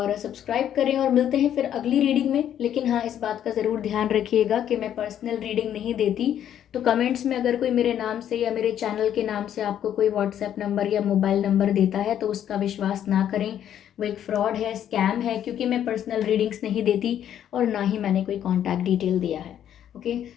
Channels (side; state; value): right; quieter; 10.2 dB